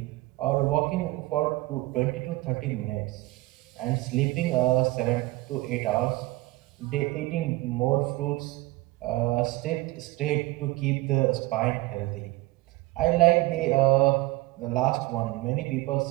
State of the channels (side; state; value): left; quieter; 19.7 dB